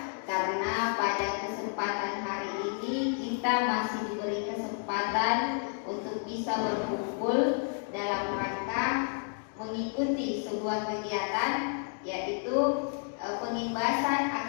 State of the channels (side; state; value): right; silent; 57 dB below the other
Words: karena pada kesempatan hari ini kita masih diberi kesempatan untuk bisa berkumpul dalam rangka mengikuti sebuah kegiatan, yaitu pengimbasan